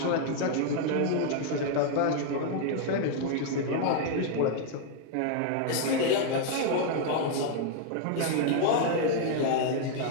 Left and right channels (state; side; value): different; both; correlation 0.00